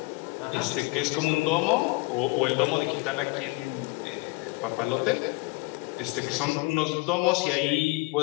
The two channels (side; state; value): right; quieter; 25.1 dB